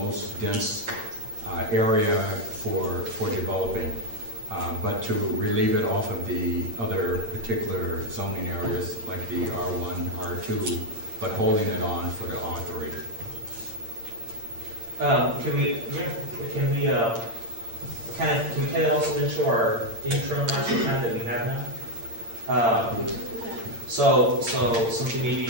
most dense area for developing, but to relieve it off of the other particular zoning areas like the R1, R2, but holding it on for the R3. Can we kind of also into our interim master plan that we have now? So something maybe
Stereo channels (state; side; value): late; left; 8.8 ms